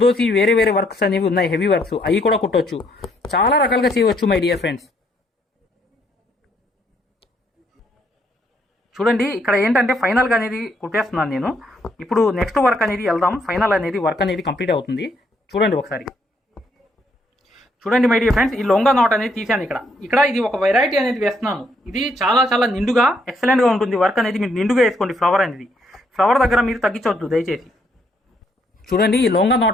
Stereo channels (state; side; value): normal; both; correlation 0.71